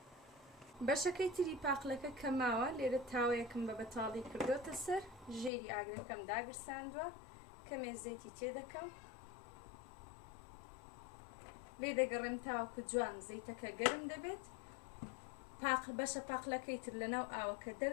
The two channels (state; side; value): drops out; right; at 5.5 s